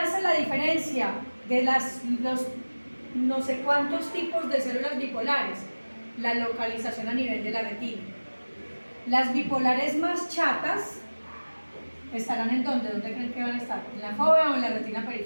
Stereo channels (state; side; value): inverted; both; correlation -1.00